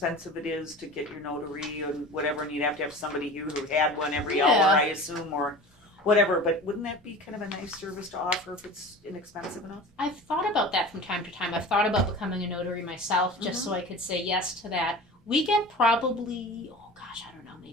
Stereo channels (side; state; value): both; normal; correlation 0.36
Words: it is to get your notary and whatever, and you'd have to have somebody here who had one every hour, I assume, or whatever, but wouldn't that be kind of a nice service to offer if it's inexpensive enough? I've thought about that from time to time. I've thought about becoming a notary myself just so I could say yes to that. We get probably, I don't know,